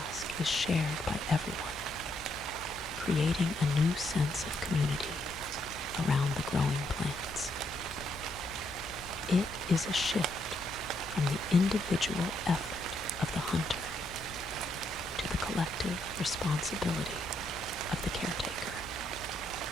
is shared by everyone, creating a new sense of community around the growing plants. It is a shift from the individual effort of the hunter to the collective responsibility of the caretaker.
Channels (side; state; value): left; noise; hum, 17 dB below the sound